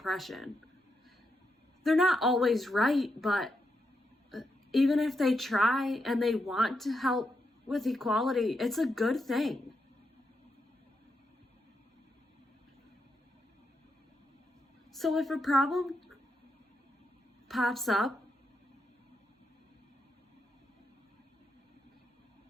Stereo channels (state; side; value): normal; both; correlation 0.83